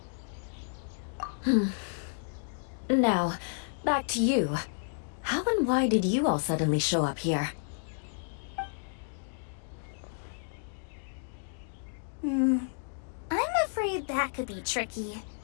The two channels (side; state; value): right; silent; digital silence